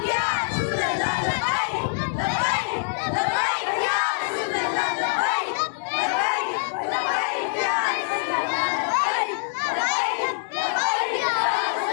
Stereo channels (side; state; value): right; silent; digital silence